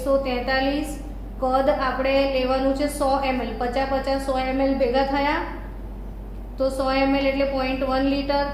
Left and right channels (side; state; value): both; identical; correlation 1.00